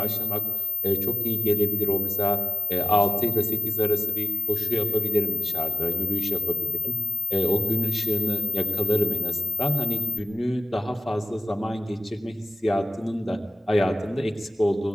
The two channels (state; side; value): normal; both; correlation 0.92